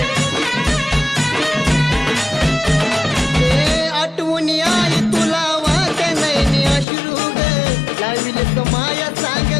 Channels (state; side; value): drops out; right; at 6.9 s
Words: आठवून आई तुला वाट नाही अश्रू ग लाविल माया सांग